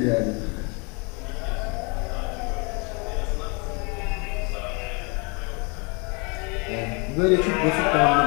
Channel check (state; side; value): quieter; right; 31.8 dB